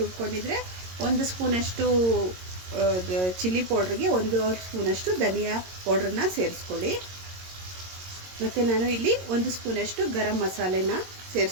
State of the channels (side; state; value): left; late; 22 ms